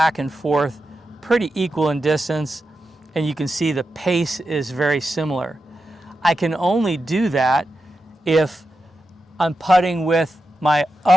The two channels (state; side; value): normal; both; correlation 0.89